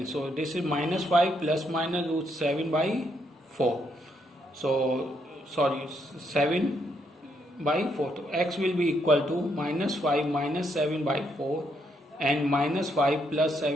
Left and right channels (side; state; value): both; normal; correlation 0.76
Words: So this is minus 5 plus minus root 7 by 4. So sorry, 7 by 4. So x will be equal to minus 5 minus 7 by 4 and minus 5 plus